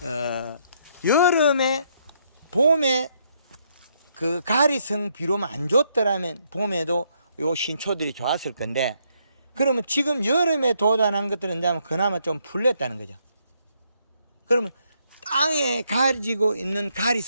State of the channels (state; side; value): inverted; both; correlation -0.73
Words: 여름에 봄에 그 가리성 비료만 안 줬더라면 봄에도 요 신초들이 좋았을 건데 그러면 지금 여름에 도달한 것들은 그나마 좀 풀렸다는 거죠. 그러면 땅에 가지고 있는 가리